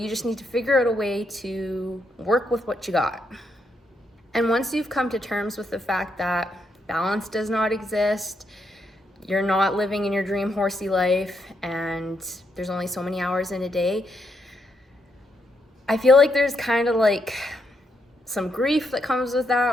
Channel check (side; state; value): both; normal; correlation 0.79